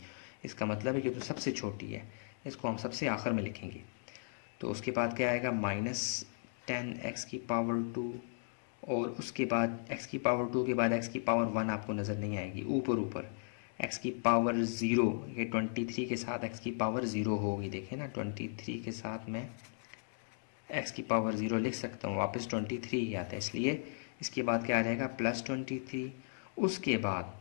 इसका मतलब है कि तो सबसे छोटी है, इसको हम सबसे आखिर में लिखेंगे। तो उसके बाद क्या आएगा, -10x की पावर 2 और उसके बाद x की पावर 2 के बाद x की पावर 1 आपको नज़र नहीं आएगी, ऊपर x की पावर 0। ये 23 के साथ x की पावर 0 होगी, देखें ना 23 के साथ मैं x की पावर 0 लिख सकता हूँ, वापस 23 ही आता है। इसलिए इसके बाद क्या आ जाएगा, +23। उसके बाद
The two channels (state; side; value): silent; right; digital silence